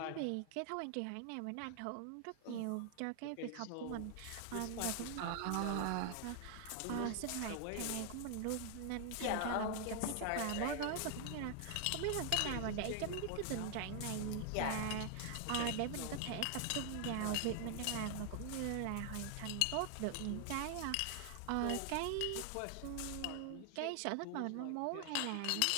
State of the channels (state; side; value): different; both; correlation 0.00